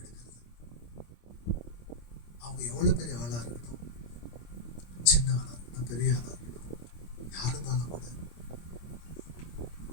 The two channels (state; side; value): late; right; 25 ms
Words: எடுக்கிறது. அவங்க எவ்வளவு பெரிய ஆளா இருக்கணும், சின்ன ஆளா இருக்கணும், பெரிய ஆளா இருக்கணும், யார் இருந்தாலும் கூட